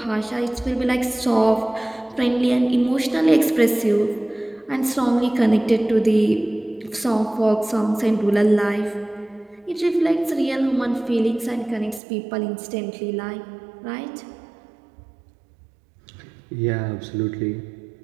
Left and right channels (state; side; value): drops out; left; at 12.0 s